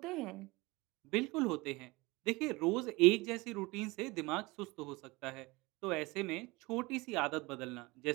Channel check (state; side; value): quieter; left; 23.2 dB